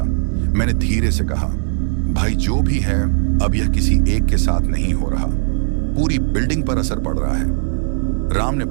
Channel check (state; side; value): silent; left; digital silence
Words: मैंने धीरे से कहा, भाई जो भी है अब यह किसी एक के साथ नहीं हो रहा, पूरी बिल्डिंग पर असर पड़ रहा है। राम ने